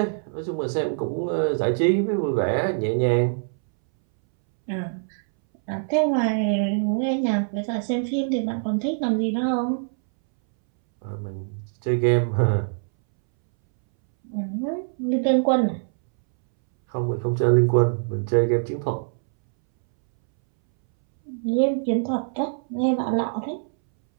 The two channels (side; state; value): left; silent; 63 dB below the other